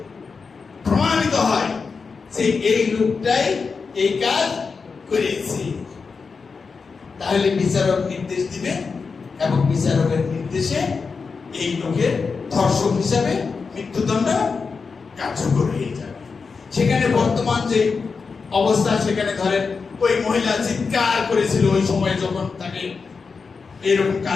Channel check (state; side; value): quieter; right; 5.0 dB